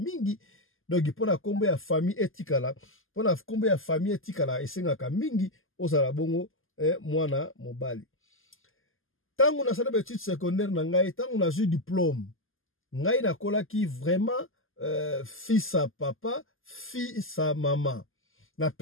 donc, pona kombo ya famille etikala, pona kombo ya famille etikala, esengaka mingi, osala bongo, mwana mobali. Tango na sala études secondaires na ngai, tango na ju diplôme, ngai na kolaki vraiment fils à papa, fils à maman. Na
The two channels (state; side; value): late; right; 0.59 ms